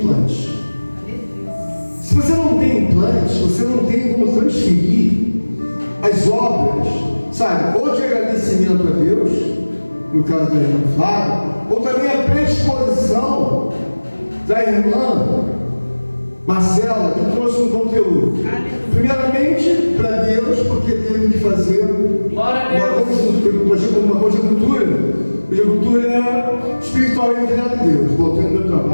Se você não tem implantes, você não tem como transferir as obras, sabe, ou de agradecimento a Deus, no caso da irmã Flávia, ou também a predisposição da irmã Marcela, que trouxe um conteúdo. Primeiramente, para Deus, porque teve que fazer uma conjuntura espiritual entre ela e Deus. Voltando meu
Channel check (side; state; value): both; inverted; correlation -1.00